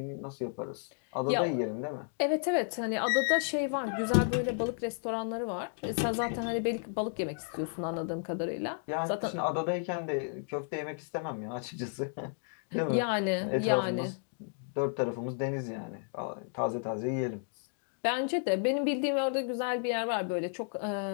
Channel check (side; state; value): right; silent; 56 dB below the other